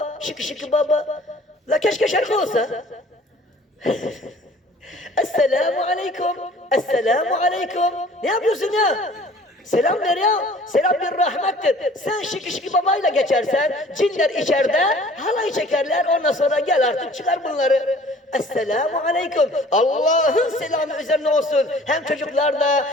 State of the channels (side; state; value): both; normal; correlation 0.50